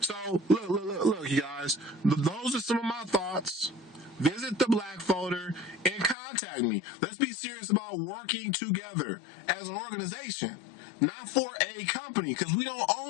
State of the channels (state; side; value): drops out; right; at 6.2 s